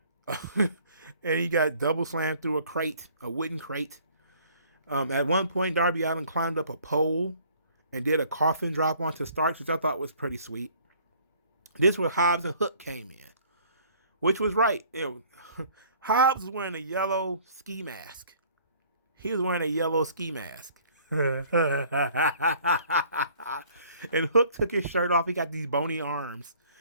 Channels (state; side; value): inverted; both; correlation -0.56